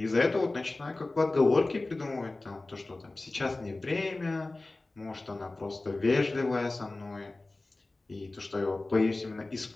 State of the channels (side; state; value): right; quieter; 3.1 dB